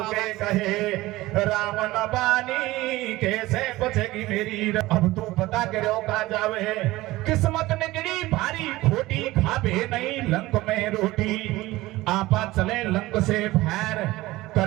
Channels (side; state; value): left; quieter; 18.5 dB